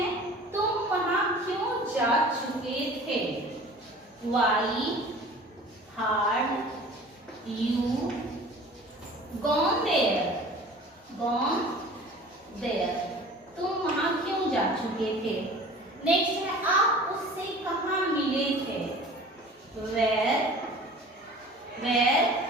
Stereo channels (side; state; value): both; normal; correlation 0.43